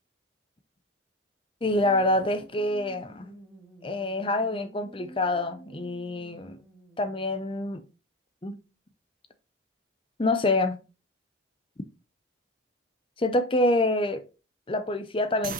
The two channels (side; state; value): both; normal; correlation 0.23